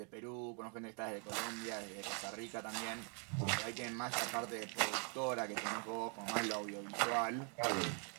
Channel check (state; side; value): quieter; left; 38.8 dB